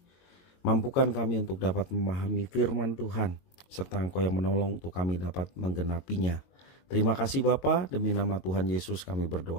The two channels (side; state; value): right; late; 22 ms